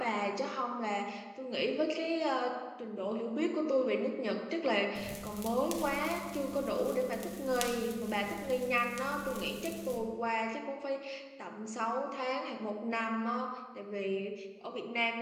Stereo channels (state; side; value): identical; both; correlation 1.00